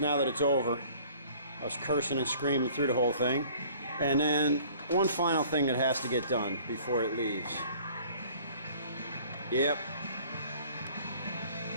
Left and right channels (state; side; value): inverted; both; correlation -0.53